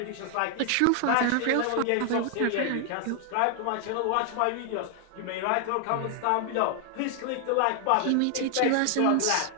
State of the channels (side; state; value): both; different; correlation 0.00